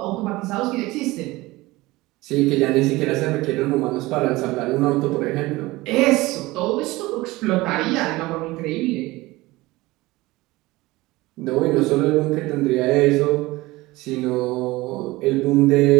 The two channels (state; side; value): quieter; left; 20.1 dB